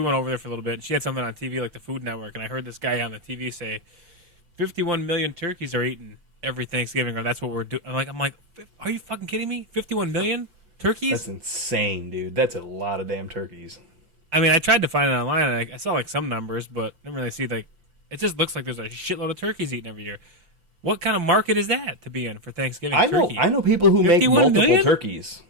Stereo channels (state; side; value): late; left; 5.8 ms